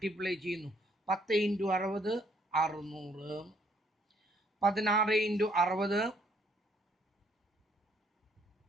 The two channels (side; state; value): both; normal; correlation 0.66